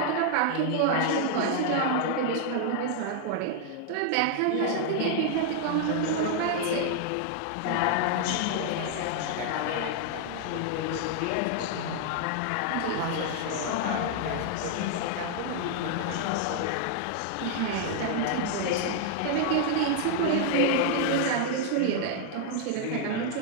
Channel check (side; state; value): both; different; correlation 0.00